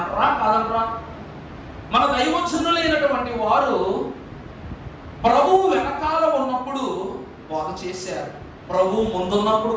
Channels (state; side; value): identical; both; correlation 1.00